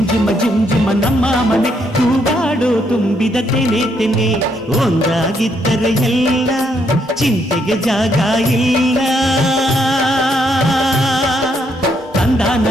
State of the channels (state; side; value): normal; both; correlation 0.74